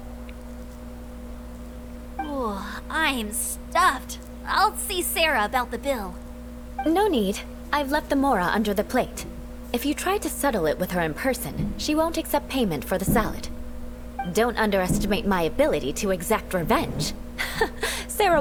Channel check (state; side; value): identical; both; correlation 1.00